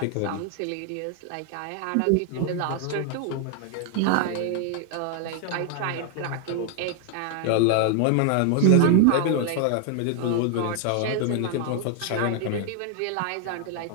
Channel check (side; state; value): both; different; correlation 0.00